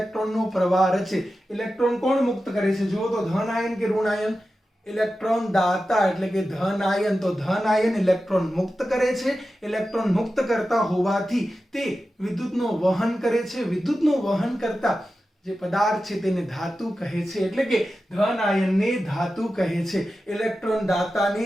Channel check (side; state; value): both; normal; correlation 0.93